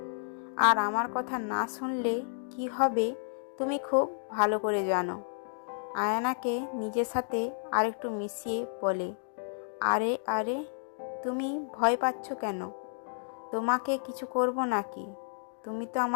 আর আমার কথা না শুনলে কি হবে তুমি খুব ভালো করে জানো। আয়নাকে নিজের সাথে আরেকটু মিশিয়ে বলে, আরে আরে, তুমি ভয় পাচ্ছ কেন? তোমাকে কিছু করব নাকি? তুমি তো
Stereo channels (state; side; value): silent; right; digital silence